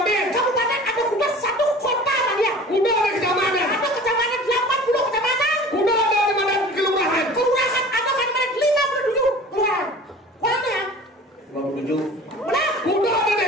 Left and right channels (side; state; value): both; normal; correlation 0.42